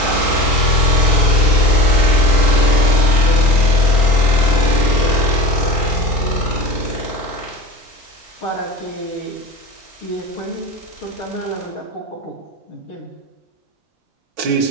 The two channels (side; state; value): both; normal; correlation 0.34